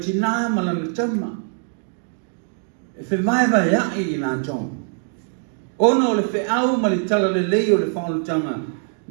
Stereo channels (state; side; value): silent; left; 63 dB below the other